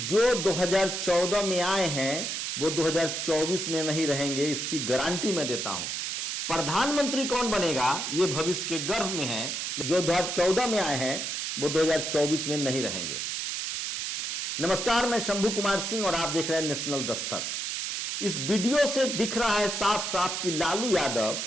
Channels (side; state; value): right; noise; hiss, 3 dB below the sound